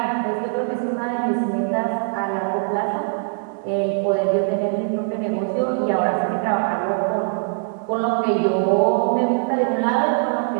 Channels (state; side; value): silent; left; digital silence